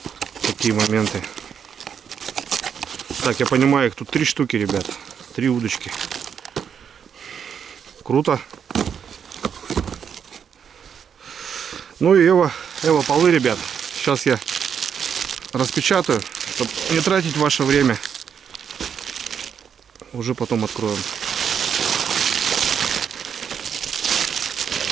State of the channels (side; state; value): left; quieter; 7.6 dB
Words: такие моменты. Так, я понимаю, их тут 3 штуки, ребят. 3 удочки. Круто. Ну и Эва полы, ребят. Сейчас я распечатаю, чтобы не тратить ваше время. Уже потом откроем.